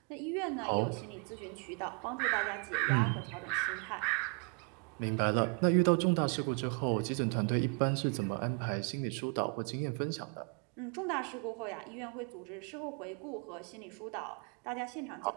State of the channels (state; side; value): quieter; left; 38.5 dB